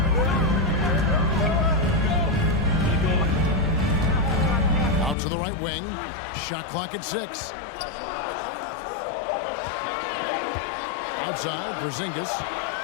Out to the right wing. Shot clock at 6. Outside, Porzingis.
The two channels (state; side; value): drops out; right; at 5.2 s